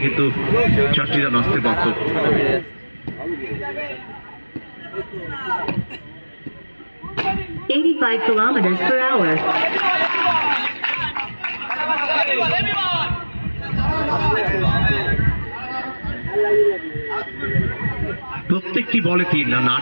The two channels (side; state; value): both; inverted; correlation -1.00